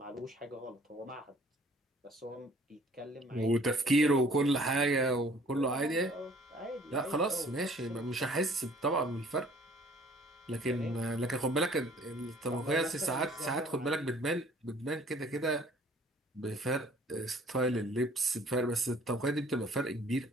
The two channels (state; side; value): normal; both; correlation 0.55